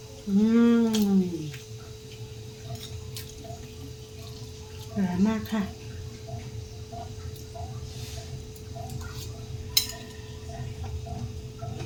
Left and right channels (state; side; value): identical; both; correlation 1.00